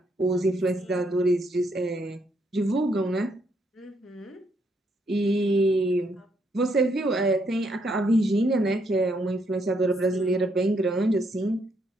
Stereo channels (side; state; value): both; normal; correlation 0.74